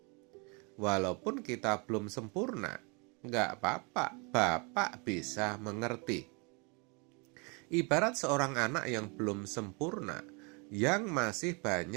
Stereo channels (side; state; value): left; quieter; 31.7 dB